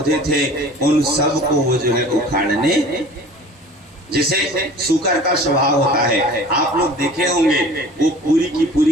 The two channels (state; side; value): normal; both; correlation 0.44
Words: थे, उन सब को वो जो है उखाड़ने, जैसे सूकर का स्वभाव होता है। आप लोग देखे होंगे, वो पूरी की